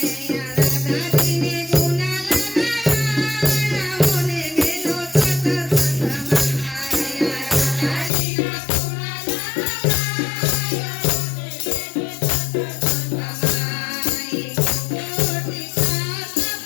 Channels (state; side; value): drops out; right; at 8.1 s